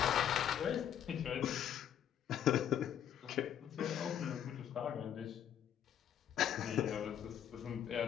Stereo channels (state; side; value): quieter; right; 9.7 dB